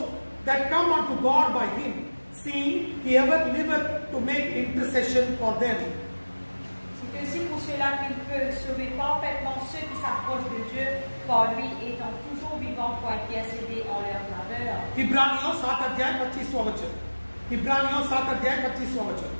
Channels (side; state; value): both; inverted; correlation -1.00